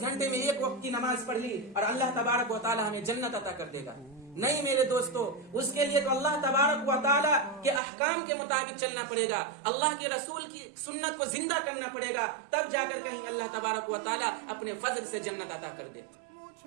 گھنٹے میں ایک وقت کی نماز پڑھ لی اور اللہ تبارک و تعالی ہمیں جنت عطا کر دے گا۔ نہیں میرے دوستو، اس کے لیے تو اللہ تبارک و تعالی کے احکام کے مطابق چلنا پڑے گا، اللہ کے رسول کی سنت کو زندہ کرنا پڑے گا، تب جا کر کہیں اللہ تبارک و تعالی اپنے فضل سے جنت عطا کر دے۔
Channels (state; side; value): drops out; left; at 7.8 s